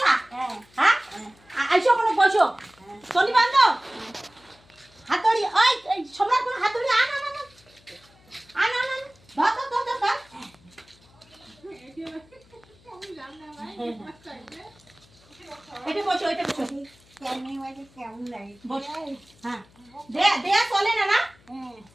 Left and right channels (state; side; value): noise; left; hum, 29 dB below the sound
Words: হ্যাঁ। আইসো কোনো বসো। চলি বান্ধব। হাতুড়ি, ওই সম্রাট কোন হাতুড়ি আন আন আন আন আন আন ধর ধর ধর ধর। এটা বসো, এটা বসো। কেমন লাগে? বসো। হ্যাঁ। দেয়া চলে না না?